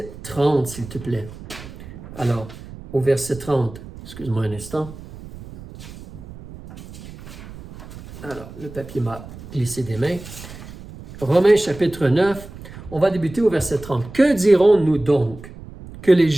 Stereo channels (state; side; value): noise; right; rumble, 15 dB below the sound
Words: 30, s'il te plaît. Alors, au verset 30, excuse-moi un instant. Alors, le papier m'a glissé des mains. Romains chapitre 9, on va débuter au verset 30. Que dirons-nous donc? Que les